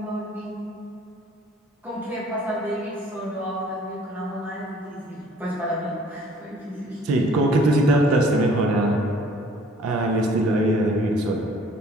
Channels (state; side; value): normal; both; correlation 0.56